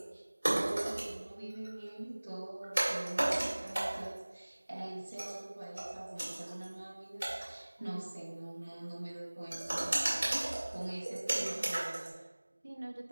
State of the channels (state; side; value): inverted; both; correlation -1.00